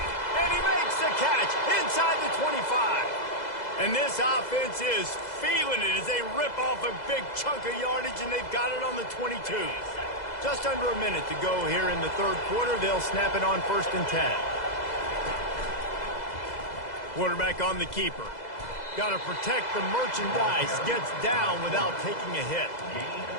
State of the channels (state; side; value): late; right; 2.0 ms